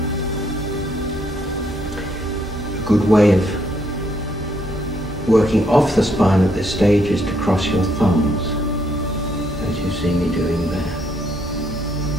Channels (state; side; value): normal; both; correlation 0.72